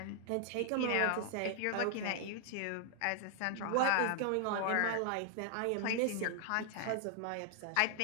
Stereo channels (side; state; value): both; different; correlation 0.00